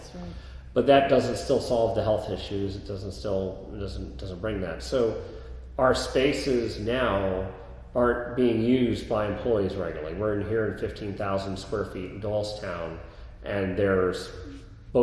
right. But that doesn't still solve the health issues. It doesn't bring that. So our spaces now aren't being used by employees regularly. We're in here in 15,000 square feet in Doylestown, and there's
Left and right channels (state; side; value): identical; both; correlation 1.00